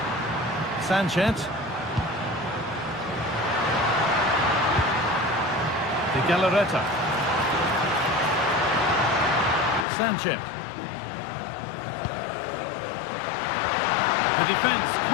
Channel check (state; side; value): drops out; right; at 9.9 s